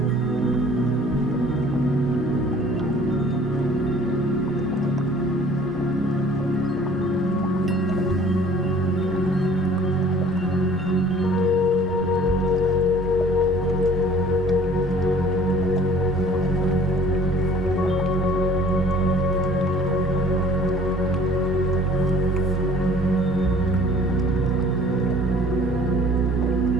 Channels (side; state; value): both; normal; correlation 0.51